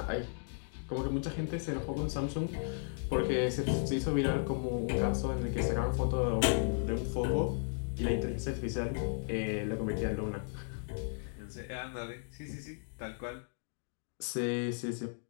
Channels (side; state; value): right; silent; digital silence